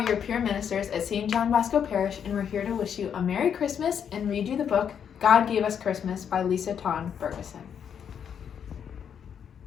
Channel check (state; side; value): quieter; right; 8.0 dB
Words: your peer ministers at St. John Bosco Parish, and we're here to wish you a Merry Christmas and read you the book God Gave Us Christmas by Lisa Tawn Ferguson.